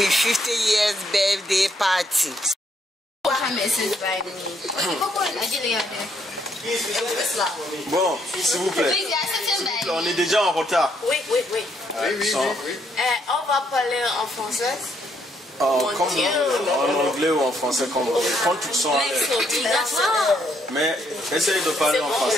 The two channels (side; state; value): both; normal; correlation 0.72